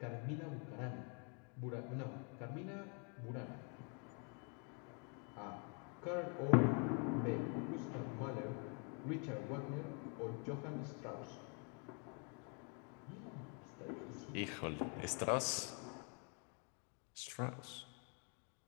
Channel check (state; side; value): quieter; right; 37.7 dB